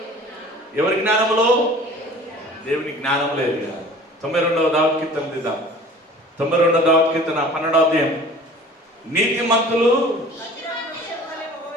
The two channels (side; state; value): both; normal; correlation 0.46